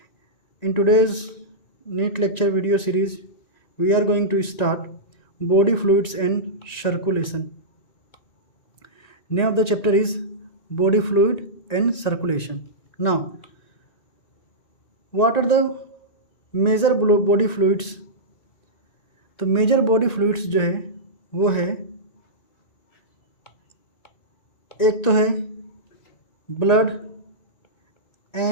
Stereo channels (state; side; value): late; right; 1.9 ms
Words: In today's NEET lecture video series, we are going to start body fluids and circulation. Name of the chapter is body fluid and circulation. Now, what are the major body fluids? तो major body fluids जो है वो है, एक तो है blood